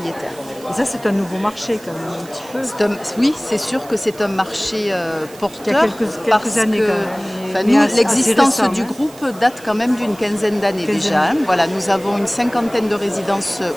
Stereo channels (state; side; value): noise; right; hiss, 21 dB below the sound